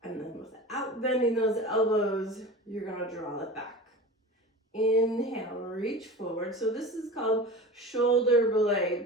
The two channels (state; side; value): normal; both; correlation 0.34